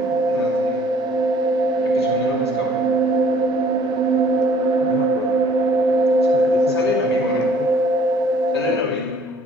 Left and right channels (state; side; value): normal; both; correlation 0.56